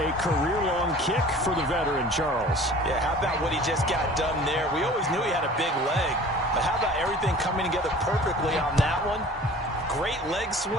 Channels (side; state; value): both; normal; correlation 0.45